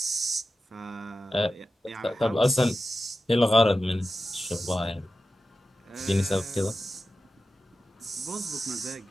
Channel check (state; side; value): normal; both; correlation 0.93